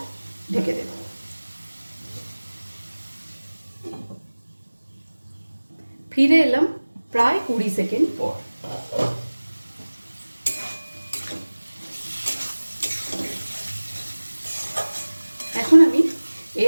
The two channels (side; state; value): both; inverted; correlation -1.00